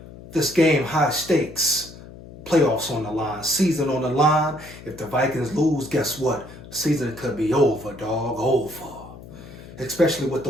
This game, high stakes, playoffs on the line, season on the line. If the Vikings lose, guess what? Season could be over, dog, over. Especially with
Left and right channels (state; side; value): noise; left; hum, 17 dB below the sound